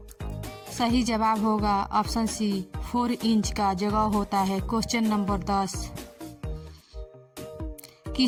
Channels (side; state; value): both; identical; correlation 1.00